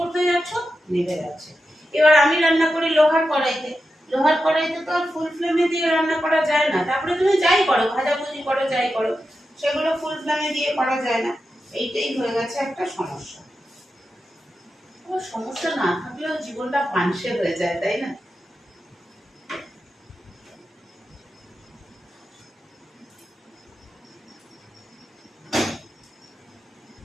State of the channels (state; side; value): normal; both; correlation 0.90